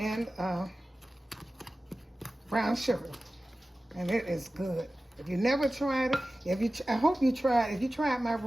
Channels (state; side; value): normal; both; correlation 0.96